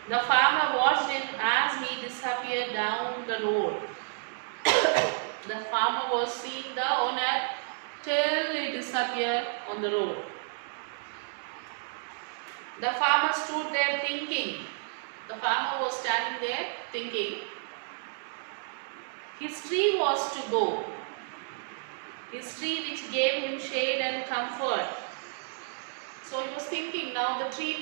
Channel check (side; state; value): left; silent; digital silence